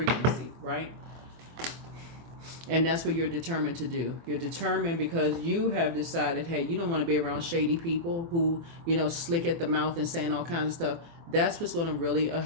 right? And that's what you're determined to do. You're determined because you have decided, hey, you don't want to be around shady people who, slick at the mouth and saying all kinds of stuff. That's what's going to really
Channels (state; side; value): late; left; 24 ms